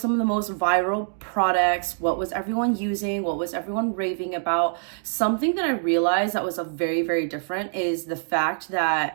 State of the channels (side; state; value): left; silent; digital silence